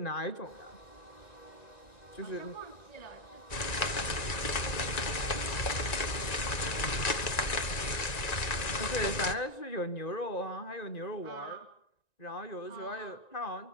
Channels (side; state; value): right; late; 1.9 ms